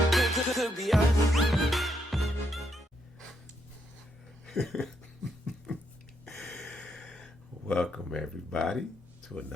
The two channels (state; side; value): normal; both; correlation 0.77